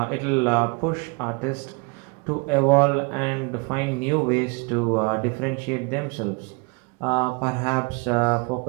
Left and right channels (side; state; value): left; quieter; 31.6 dB